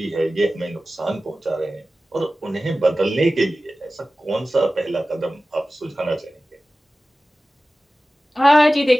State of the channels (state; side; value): normal; both; correlation 0.96